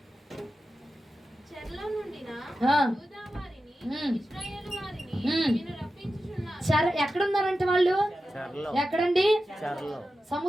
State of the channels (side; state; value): both; normal; correlation 0.92